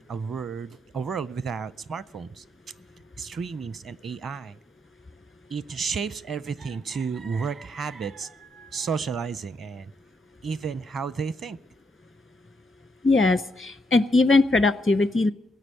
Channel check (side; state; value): both; normal; correlation 0.77